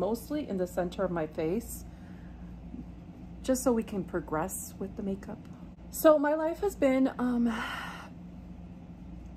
in the center of my face, just so we can progress with the makeup. So my life has been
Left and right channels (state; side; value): identical; both; correlation 1.00